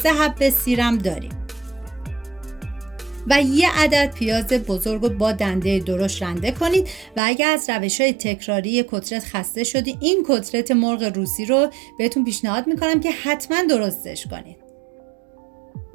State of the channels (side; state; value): left; drops out; at 7.2 s